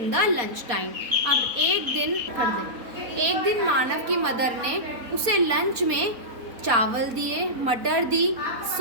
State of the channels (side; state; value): left; late; 4.3 ms